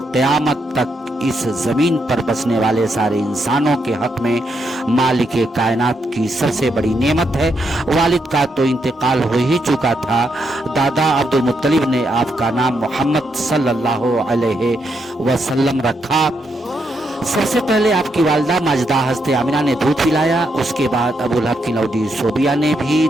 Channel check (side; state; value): both; normal; correlation 0.80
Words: قیامت تک اس زمین پر بسنے والے سارے انسانوں کے حق میں مالک کائنات کی سب سے بڑی نعمت ہے۔ والد کا تو انتقال ہو ہی چکا تھا۔ دادا عبد المطلب نے آپ کا نام محمد صلی اللہ علیہ وسلم رکھا۔ سب سے پہلے آپ کی والدہ ماجدہ حضرت آمنہ نے دودھ پلایا، اس کے بعد ابو لہب کی نودی صوبیہ نے بھی